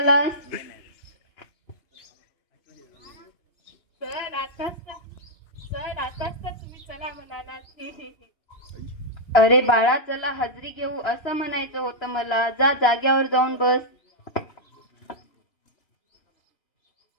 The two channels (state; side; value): late; right; 3.0 ms